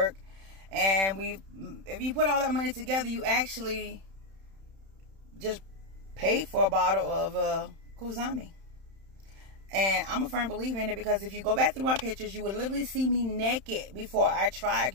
And if you put all that money together, you actually just pay for a bottle of Qsymia. And I'm a firm believer in it, because if you go back through my pictures, you would literally see me naked before I tried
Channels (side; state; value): left; late; 31 ms